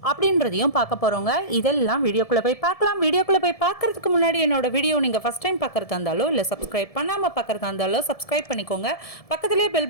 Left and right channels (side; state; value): right; late; 1.7 ms